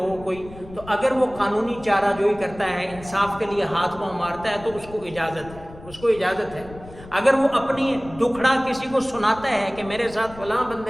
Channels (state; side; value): noise; left; rumble, 18 dB below the sound